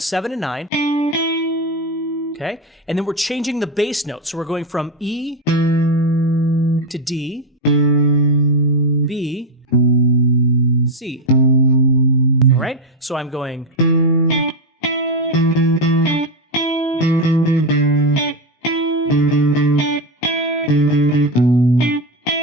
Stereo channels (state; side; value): normal; both; correlation 0.08